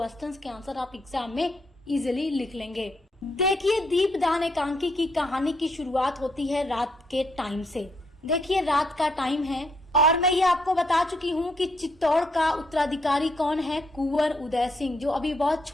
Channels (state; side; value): normal; both; correlation 0.74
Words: के आंसर आप एग्जाम में इजीली लिख लेंगे। देखिए, दीपदान एकांकी की कहानी की शुरुआत होती है रात के टाइम से। देखिए, रात का टाइम है और मैं ये आपको बता चुकी हूँ कि चित्तौड़ का उत्तराधिकारी कौन है, कुंवर उदय सिंह, जो अभी बहुत